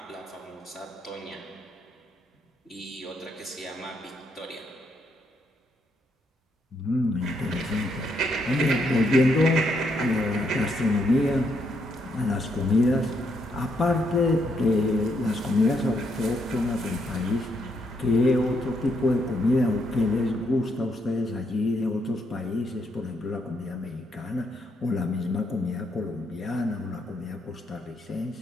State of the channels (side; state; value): both; normal; correlation 0.76